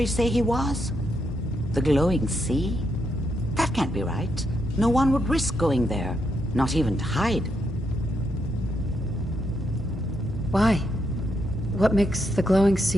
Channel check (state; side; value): normal; both; correlation 0.80